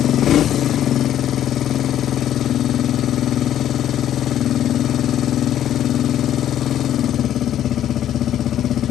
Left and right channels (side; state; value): right; quieter; 11.1 dB